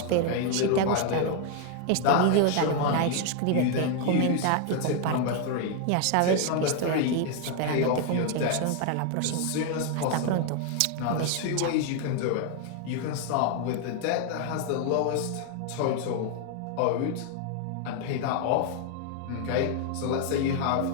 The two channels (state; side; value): different; both; correlation 0.01